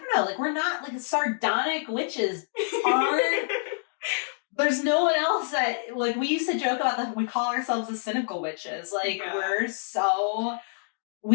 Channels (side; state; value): right; silent; digital silence